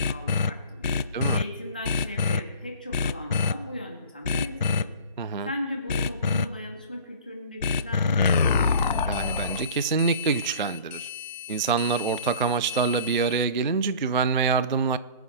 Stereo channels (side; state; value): both; inverted; correlation -0.42